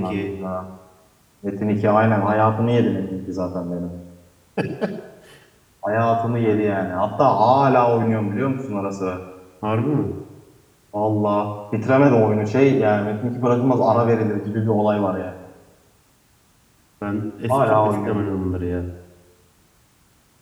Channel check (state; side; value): identical; both; correlation 1.00